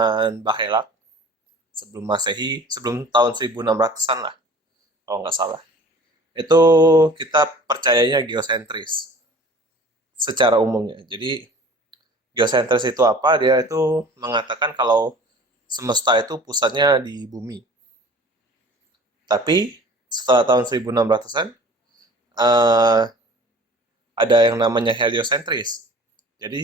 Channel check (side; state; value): both; normal; correlation 0.45